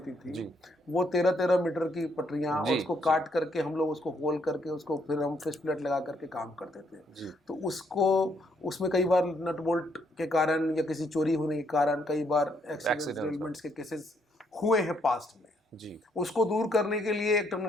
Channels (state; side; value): normal; both; correlation 0.72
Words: थी, वो 13-13 मीटर की पटरियाँ, और उसको काट करके हम लोग उसको होल करके उसको फिर हम फिश प्लेट लगा करके काम करते थे। तो उसमें कई बार नट बोल्ट के कारण या किसी चोरी होने के कारण कई बार एक्सीडेंट्स के केसेस हुए हैं पास्ट में जी। उसको दूर करने के लिए एक